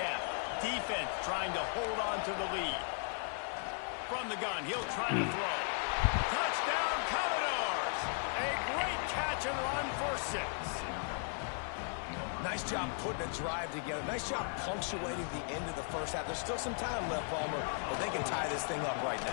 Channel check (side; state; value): right; silent; 53 dB below the other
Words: Defense trying to hold on to the lead. From the gun, he'll try to throw. Touchdown, Commodores! A great catch and run for 6. Nice job putting a drive together. Nice job punctuating the end of the first half. There's still some time left, Palmer, but they can tie this thing up right